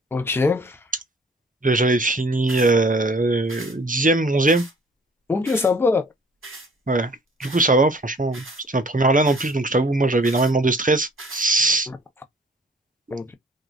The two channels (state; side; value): normal; both; correlation 0.54